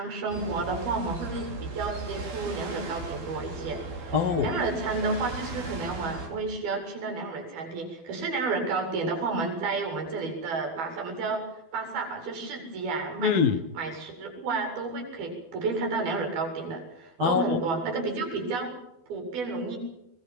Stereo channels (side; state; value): left; late; 12 ms